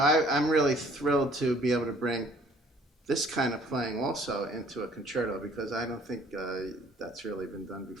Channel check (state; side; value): normal; both; correlation 0.57